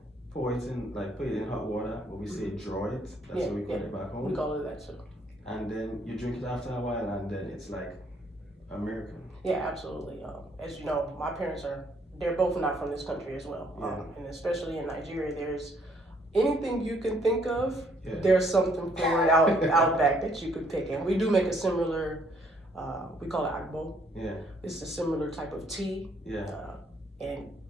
Put it in hot water, what we say draw it. That's what we call it back home. We call it that too. And then you drink it after a while, and then it's like a miracle. Yeah, absolutely. As you know, my parents they're both not from this country as well. And especially in Nigeria, there's anything you can think of, there's something for it out back that you could pick. And we do make a similar, we call it agbo. It's a similar type of tea. And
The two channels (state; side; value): normal; both; correlation 0.67